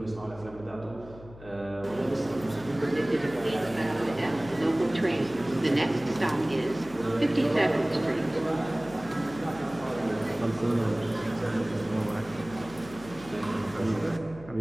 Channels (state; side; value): noise; left; hum, 18 dB below the sound